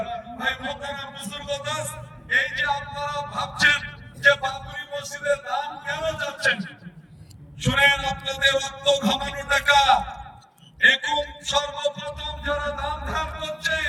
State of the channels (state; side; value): identical; both; correlation 1.00